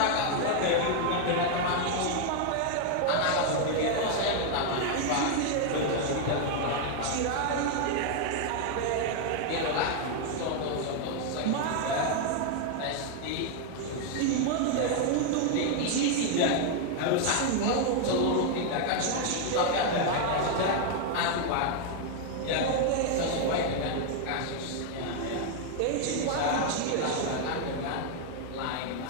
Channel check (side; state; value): both; different; correlation 0.00